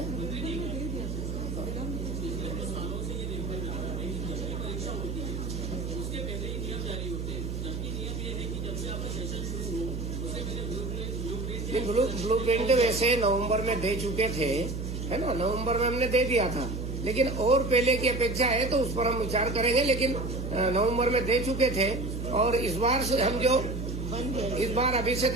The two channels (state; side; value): noise; right; hum, 4 dB below the sound